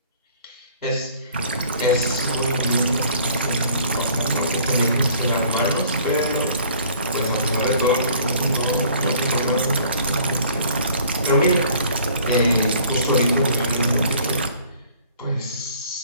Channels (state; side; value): inverted; both; correlation -0.53